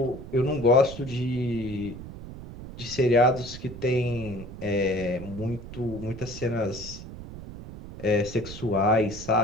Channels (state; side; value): noise; right; rumble, 12 dB below the sound